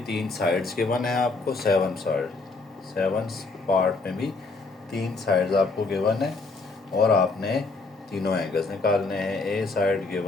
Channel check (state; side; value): quieter; right; 3.7 dB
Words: 3 साइड्स गिवन है आपको, 7 पार्ट में भी 3 साइड्स आपको गिवन है, और आपने तीनों एंगल्स निकालने हैं। ए साइड